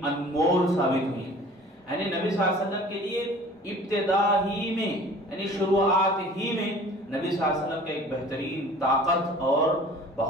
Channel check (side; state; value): both; normal; correlation 0.46